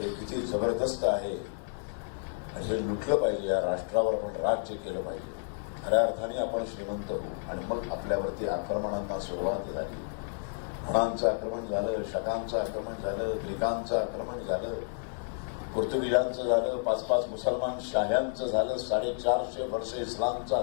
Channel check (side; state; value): right; silent; digital silence